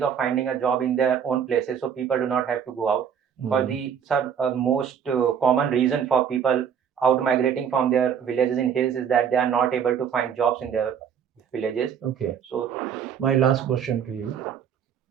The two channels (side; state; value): left; quieter; 7.9 dB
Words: finding a job in their own places, so people do not have to go out. For the most common reason for people out migrating from their villages in hills is that they are not able to find jobs in their villages. Okay. So My last question to you.